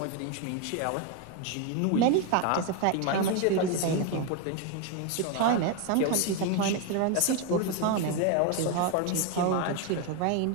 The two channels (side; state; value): both; different; correlation 0.01